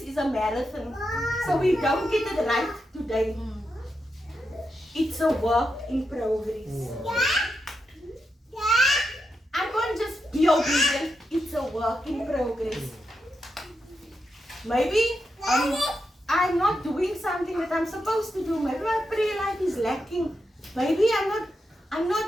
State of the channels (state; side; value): normal; both; correlation 0.86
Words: is a marathon. So we don't get it right today. It's a work in progress. I can't just be obedient. It's a work in progress. Maybe I'm not doing something that I'm supposed to do. Maybe my prayer life is lacking. Maybe I'm